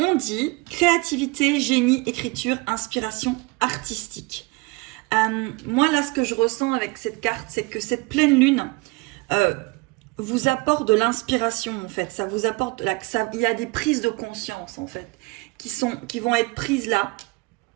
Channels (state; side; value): quieter; left; 25.9 dB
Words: dit créativité, génie, écriture, inspiration artistique. Moi, là, ce que je ressens avec cette carte, c'est que cette pleine lune vous apporte de l'inspiration, en fait. Ça vous apporte, il y a des prises de conscience, en fait, qui vont être prises là,